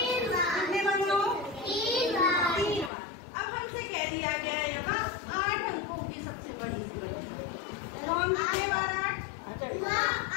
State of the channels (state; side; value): drops out; right; at 2.9 s